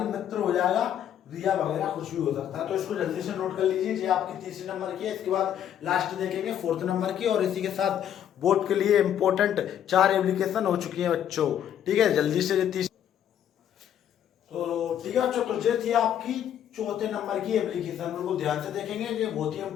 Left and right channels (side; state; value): right; quieter; 10.0 dB